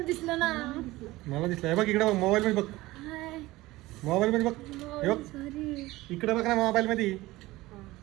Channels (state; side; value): quieter; left; 18.8 dB